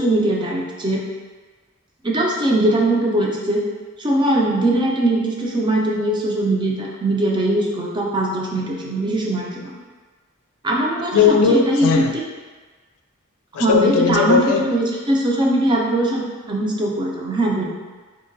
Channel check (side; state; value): both; normal; correlation 0.46